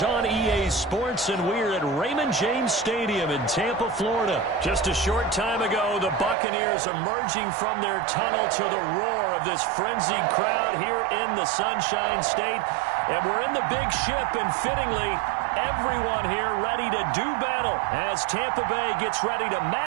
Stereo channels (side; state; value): left; drops out; at 6.4 s